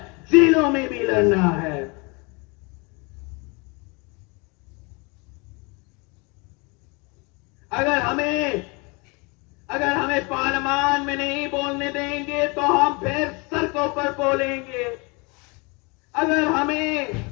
جیلوں میں بھی لڑنا ہے. اگر ہمیں پارلیمان میں نہیں بولنے دیں گے تو ہم پھر سڑکوں پر بولیں گے. اگر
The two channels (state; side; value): quieter; right; 29.6 dB